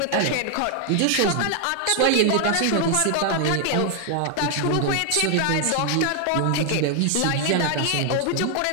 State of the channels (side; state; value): both; different; correlation 0.00